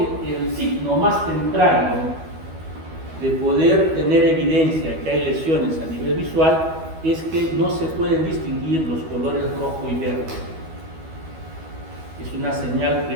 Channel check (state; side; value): late; left; 12 ms